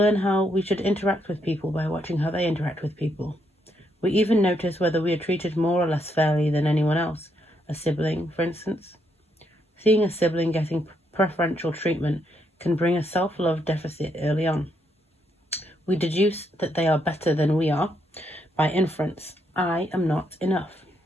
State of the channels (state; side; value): normal; both; correlation 0.76